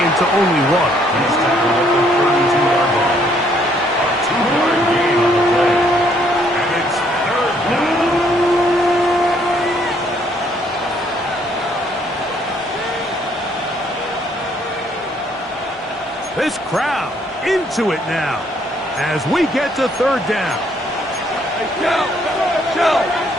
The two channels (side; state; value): both; normal; correlation 0.67